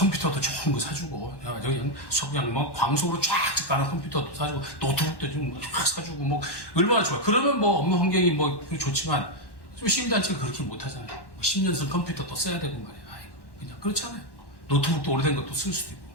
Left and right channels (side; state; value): right; late; 1.1 ms